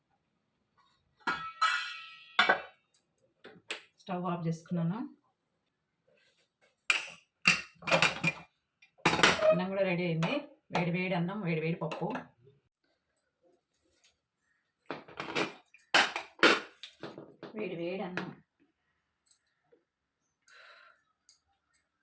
స్టవ్ ఆఫ్ చేసుకున్నాను. అన్నం కూడా రెడీ అయింది. వేడి వేడి అన్నం, వేడి వేడి పప్పు. వేడి వేడి అన్నం.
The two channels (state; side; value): identical; both; correlation 1.00